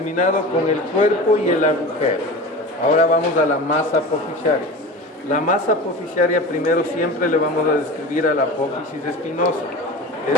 con el cuerpo y el agujero. Ahora vamos a la masa apofisiaria. La masa apofisiaria primero siempre le vamos a describir a la apófisis espinosa, es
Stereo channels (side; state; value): both; normal; correlation 0.33